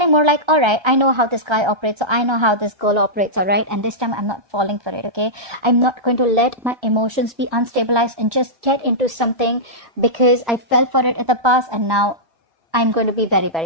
more like, all right, I know how this guy operates. So I know how this girl operates. All right. And this time I'm not falling for it. Okay. I'm not going to let my emotions be unstabilized and just get into something because I fell for it in the past. And now I'm going to be very,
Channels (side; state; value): left; late; 1.3 ms